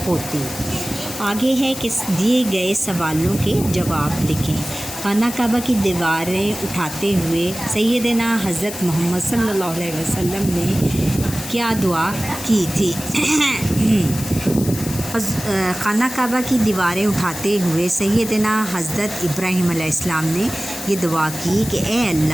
ہوتی۔ آگے ہے کہ دیے گئے سوالوں کے جواب لکھیں۔ خانہ کعبہ کی دیواریں اٹھاتے ہوئے سیدنا حضرت محمد صلی اللہ علیہ وسلم نے کیا دعا کی تھی؟ خانہ کعبہ کی دیواریں اٹھاتے ہوئے سیدنا حضرت ابراہیم علیہ السلام نے یہ دعا کی کہ اے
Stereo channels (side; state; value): left; noise; hiss, 10 dB below the sound